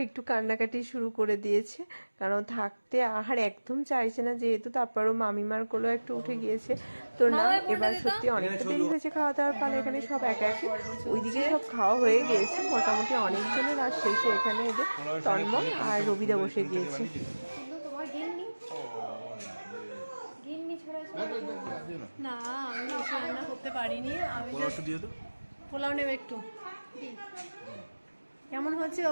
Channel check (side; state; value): both; inverted; correlation -1.00